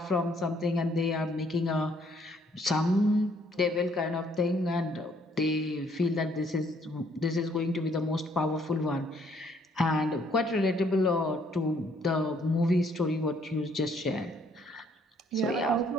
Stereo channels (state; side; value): normal; both; correlation 0.65